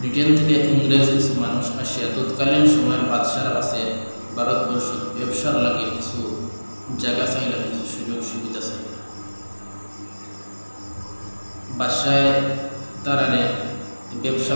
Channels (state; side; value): inverted; both; correlation -1.00